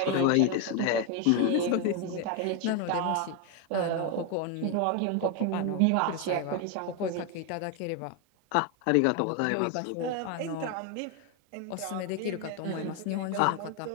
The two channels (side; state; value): both; different; correlation 0.01